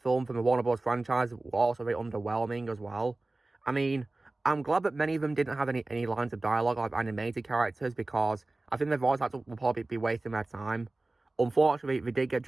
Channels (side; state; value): left; quieter; 3.0 dB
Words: from the Warner Bros. Franchise were also very underwhelming as well. I mean, I'm glad that many of them didn't have any lines of dialogue like animated characters, because I think their voice actors will probably be wasting their time. Unfortunately, they